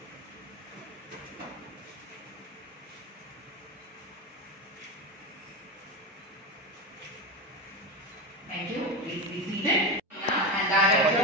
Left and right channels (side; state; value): both; normal; correlation 0.19